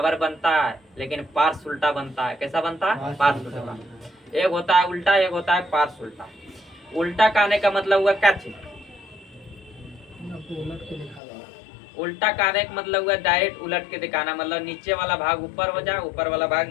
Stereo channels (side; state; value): right; drops out; at 11.2 s